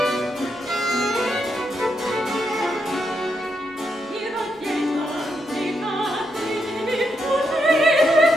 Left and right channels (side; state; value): both; normal; correlation 0.81